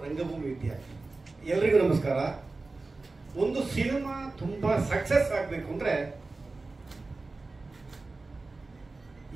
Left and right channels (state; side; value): quieter; left; 3.5 dB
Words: ರಂಗಭೂಮಿ ವಿದ್ಯಾರ್ಥಿ. ಎಲ್ರಿಗೂ ನಮಸ್ಕಾರ. ಒಂದು ಸಿನಿಮಾ ತುಂಬಾ ಸಕ್ಸಸ್ ಆಗ್ಬೇಕು ಅಂದ್ರೆ